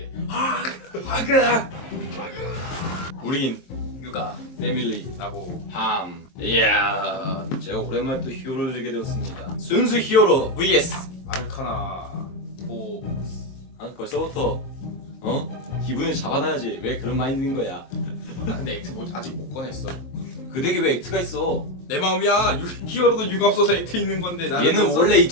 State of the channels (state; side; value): late; right; 22 ms